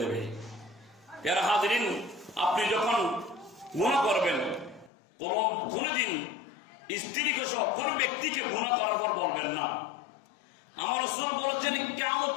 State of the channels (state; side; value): drops out; right; at 4.9 s